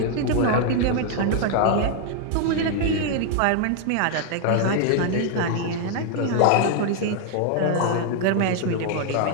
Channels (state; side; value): different; both; correlation 0.00